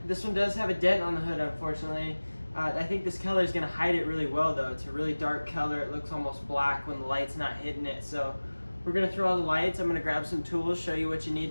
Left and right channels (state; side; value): inverted; both; correlation -1.00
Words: This one does have a dent on the hood, unfortunately. I think this color is going to hide it really well though. It's a really dark color. It looks almost black when the light's not hitting it. So we're going to throw all the lights. I'm going to grab some tools, show you what you need